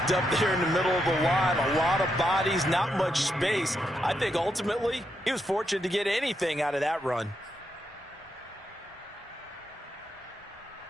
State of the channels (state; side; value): normal; both; correlation 0.82